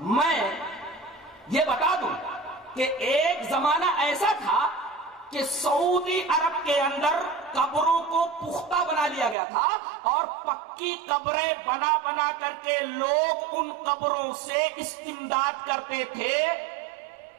یہ بتا دوں کہ ایک زمانہ ایسا تھا کہ سعودی عرب کے اندر قبروں کو پختہ بنا لیا گیا تھا، اور پکی قبریں بنا بنا کر کے لوگ ان قبروں سے استمداد کرتے تھے،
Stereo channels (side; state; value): left; drops out; at 9.3 s